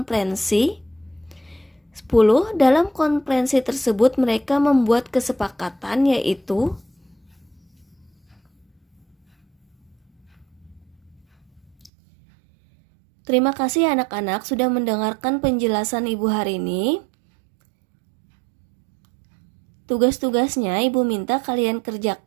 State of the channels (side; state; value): left; drops out; at 11.9 s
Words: 10. Dalam konferensi tersebut mereka membuat kesepakatan yaitu Terima kasih anak-anak sudah mendengarkan penjelasan Ibu hari ini. Tugas-tugasnya Ibu minta kalian